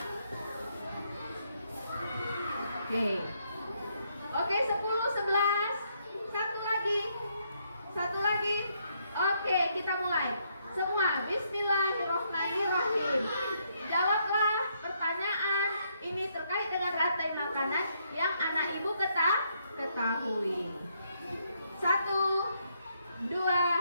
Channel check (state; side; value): inverted; both; correlation -0.74